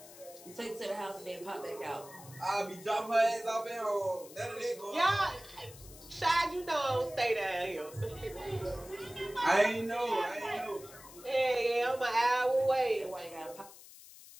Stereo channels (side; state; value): left; noise; hiss, 18 dB below the sound